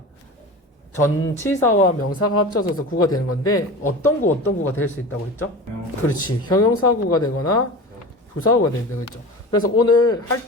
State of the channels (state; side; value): normal; both; correlation 0.32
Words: 전치사와 명사가 합쳐져서 구가 되는 건데 어떤 구가 될 수 있다고 했죠? 그렇지. 형용사구가 되거나 부사구가 되는 거죠. 그래서 오늘 할